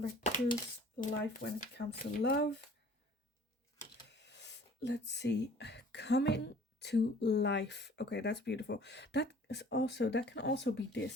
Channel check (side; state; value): both; normal; correlation 0.51